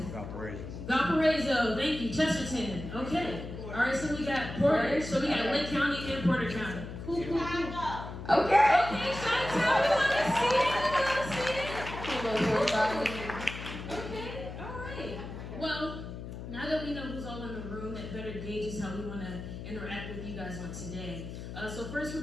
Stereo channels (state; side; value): noise; left; hum, 9 dB below the sound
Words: Valparaiso, thank you. Chesterton, okay. All right, so we got Porter, so we got Lake County and Porter County. Cool. Okay. Okay, Chi-Town, we want to see it. Okay, all right. Well, now that we know who's all in the room, that better gauges how we want to interact with you guys on today. So first we're